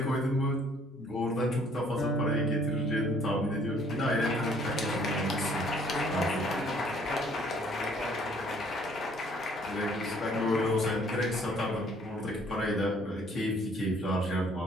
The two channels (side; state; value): both; normal; correlation 0.60